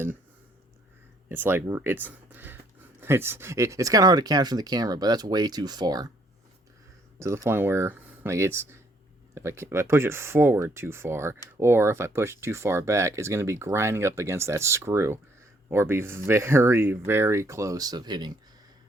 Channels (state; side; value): normal; both; correlation 0.67